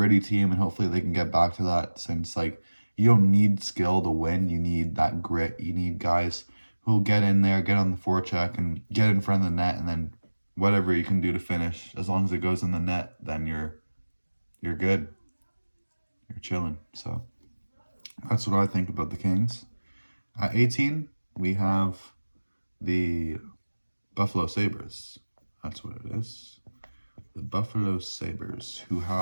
team, and hopefully they can get back to that, since you don't need skill to win. You need that grit. You need guys who'll get in there, get on the forecheck, and get in front of the net, and then whatever you can do to finish, as long as it goes in the net, then you're good. You're chilling. So that's what I think about the Kings. At 18, we have the Buffalo Sabres. That's what it is. The Buffalo Sabres, who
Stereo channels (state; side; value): inverted; both; correlation -1.00